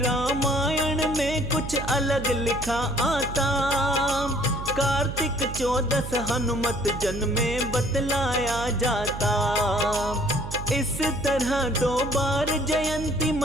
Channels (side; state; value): right; noise; hum, 8 dB below the sound